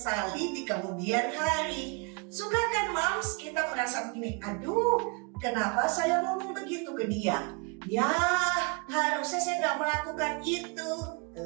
di kemudian hari. Suka kan moms kita merasa begini, aduh kenapa saya ngomong begitu ke dia? Ya harusnya saya nggak melakukan itu.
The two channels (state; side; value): quieter; left; 30.9 dB